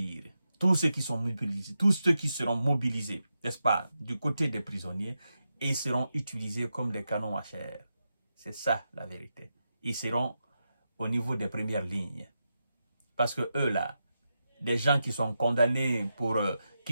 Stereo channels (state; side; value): inverted; both; correlation -0.88